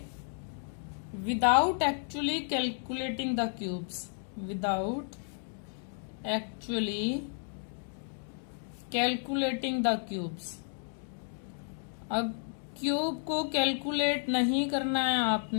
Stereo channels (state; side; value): silent; right; 56 dB below the other